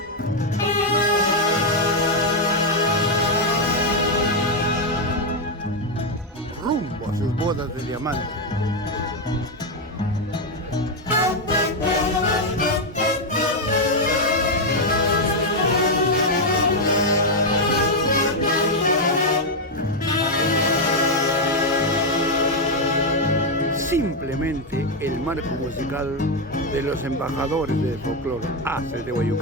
Rumbo a sus bodas de diamante. Simplemente el marco musical de los embajadores del folclore Haces de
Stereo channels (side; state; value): both; normal; correlation 0.02